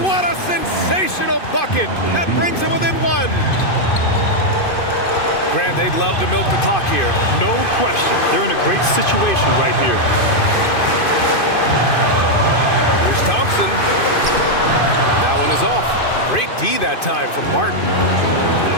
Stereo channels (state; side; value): late; right; 2.5 ms